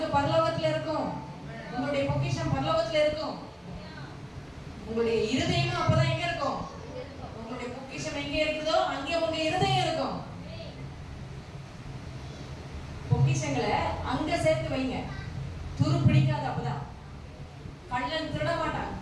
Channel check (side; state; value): both; identical; correlation 1.00